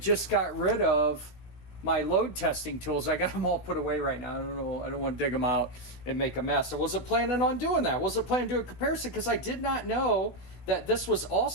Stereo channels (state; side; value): late; right; 16 ms